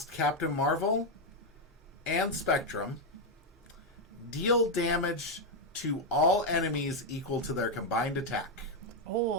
Captain Marvel and Spectrum. Deal damage to all enemies equal to their combined attack.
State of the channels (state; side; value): normal; both; correlation 0.03